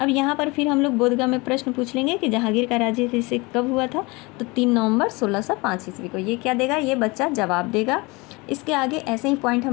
यहाँ पर फिर हम लोग बोधगया में प्रश्न पूछ लेंगे कि जहांगीर का राज्याभिषेक कब हुआ था, तो 3 नवंबर 1605 ईस्वी को। ये क्या देगा, ये बच्चा जवाब देगा। इसके आगे ऐसे ही पॉइंट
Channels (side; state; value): right; quieter; 25.3 dB